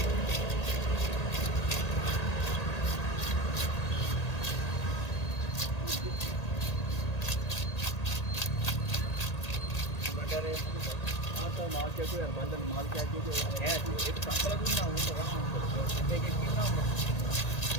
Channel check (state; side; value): late; right; 1.8 ms